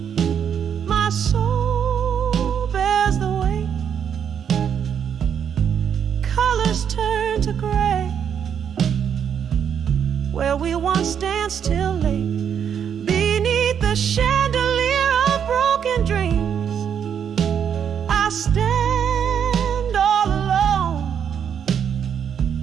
my soul bears the weight. Colors turn to gray, where we once danced till late. Beneath the chandelier of broken dreams, I stand all alone,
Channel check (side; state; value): left; quieter; 8.1 dB